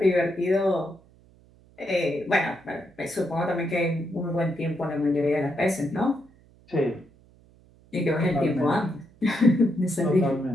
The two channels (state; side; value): noise; right; hum, 28 dB below the sound